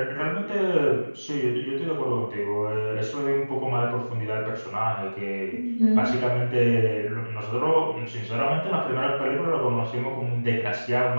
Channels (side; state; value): both; inverted; correlation -1.00